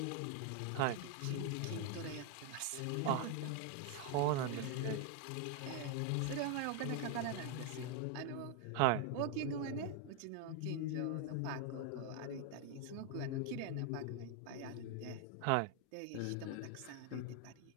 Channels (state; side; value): different; both; correlation 0.01